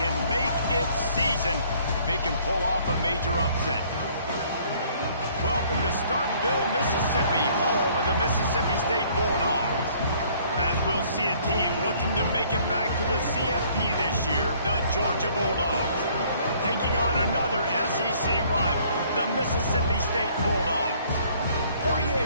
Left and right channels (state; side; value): inverted; both; correlation -0.60